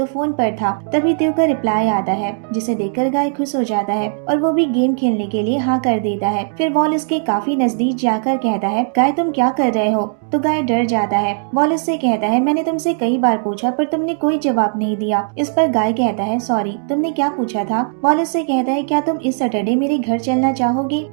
फोन पर था। तभी त्यो का रिप्लाई आता है जिसे देखकर गाय खुश हो जाता है और वो भी गेम खेलने के लिए हाँ कर देता है। फिर वॉल इसके काफी नजदीक जाकर कहता है गाय तुम क्या कर रहे हो? तो गाय डर जाता है। वॉल इससे कहता है मैंने तुमसे कई बार पूछा पर तुमने कोई जवाब नहीं दिया। इस पर गाय कहता है सॉरी, तुमने क्या पूछा था? वॉल इससे कहता है क्या तुम इस सैटरडे मेरे घर चलना चाहोगे?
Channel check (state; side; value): silent; left; digital silence